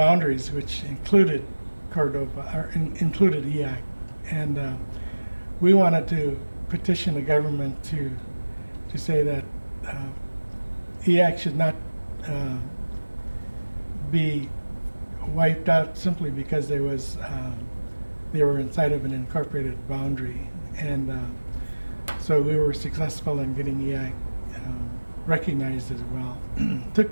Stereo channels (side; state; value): both; inverted; correlation -1.00